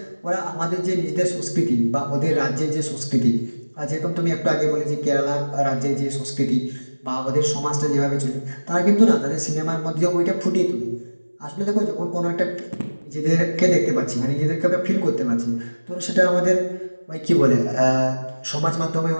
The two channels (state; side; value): inverted; both; correlation -1.00